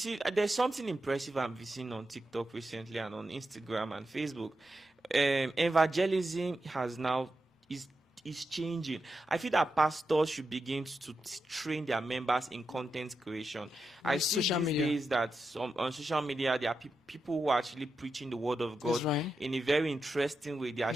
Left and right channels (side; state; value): both; normal; correlation 0.88